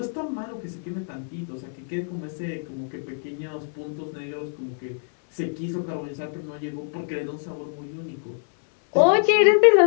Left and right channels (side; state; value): right; silent; digital silence